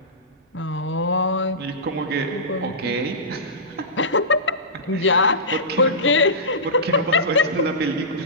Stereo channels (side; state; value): both; normal; correlation -0.19